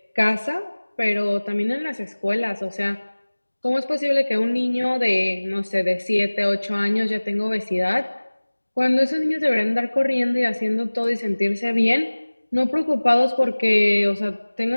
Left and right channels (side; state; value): both; inverted; correlation -1.00